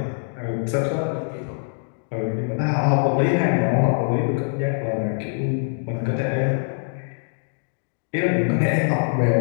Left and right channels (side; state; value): right; silent; digital silence